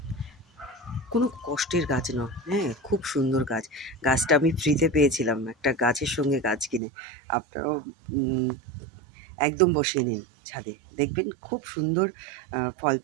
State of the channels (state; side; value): drops out; left; at 6.8 s